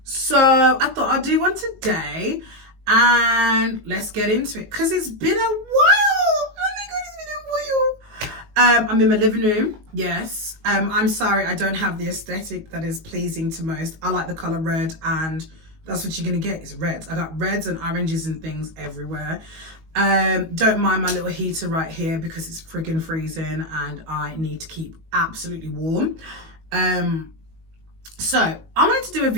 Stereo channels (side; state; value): left; late; 19 ms